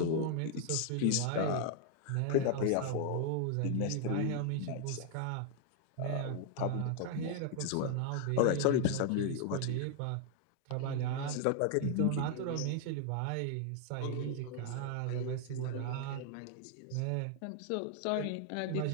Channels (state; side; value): different; both; correlation 0.00